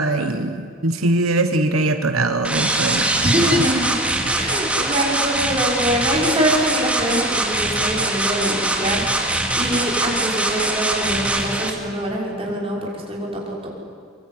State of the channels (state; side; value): normal; both; correlation 0.31